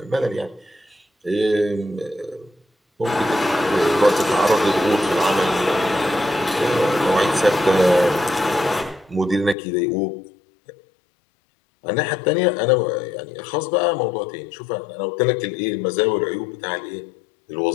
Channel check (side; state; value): right; drops out; at 9.6 s